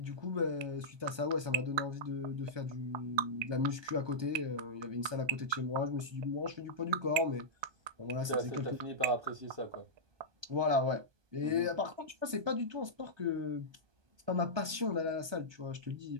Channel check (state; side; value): late; left; 1.2 ms